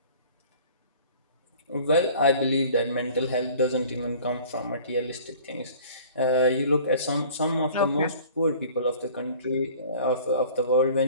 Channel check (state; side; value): inverted; both; correlation -0.48